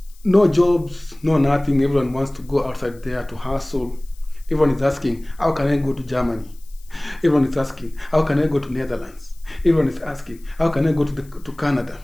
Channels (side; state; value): left; noise; hiss, 28 dB below the sound